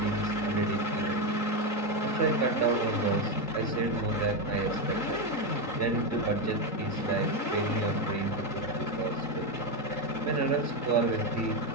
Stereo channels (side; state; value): right; late; 3.8 ms